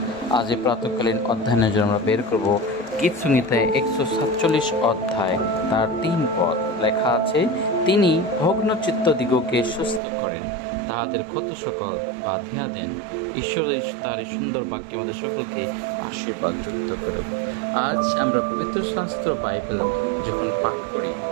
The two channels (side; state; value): left; drops out; at 10.0 s